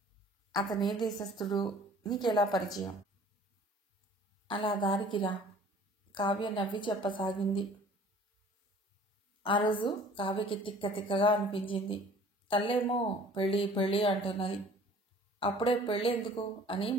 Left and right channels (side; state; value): both; normal; correlation 0.50